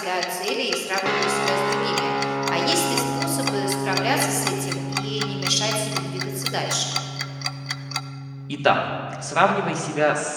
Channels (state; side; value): identical; both; correlation 1.00